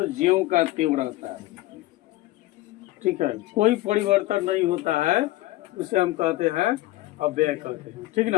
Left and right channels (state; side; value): quieter; right; 17.5 dB